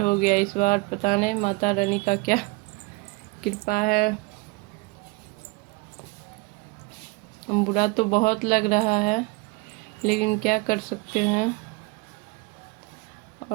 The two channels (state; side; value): quieter; left; 25.5 dB